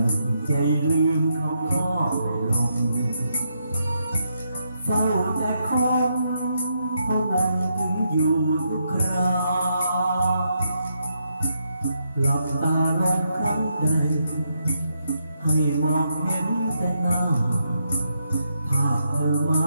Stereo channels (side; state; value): both; inverted; correlation -0.80